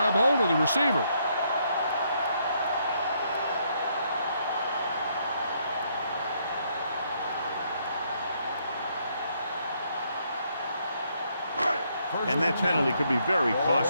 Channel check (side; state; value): both; inverted; correlation -0.72